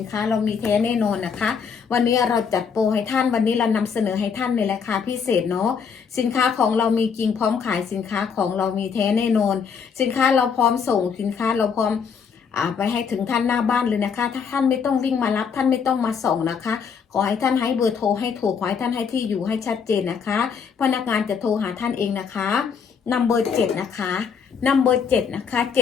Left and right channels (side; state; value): right; quieter; 6.4 dB